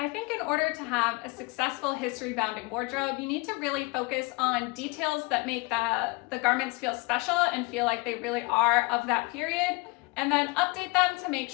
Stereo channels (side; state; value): right; quieter; 26.6 dB